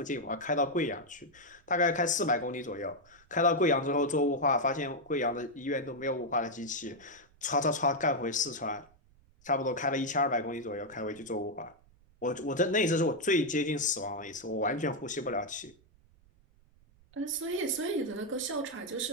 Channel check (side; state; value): right; noise; rumble, 29 dB below the sound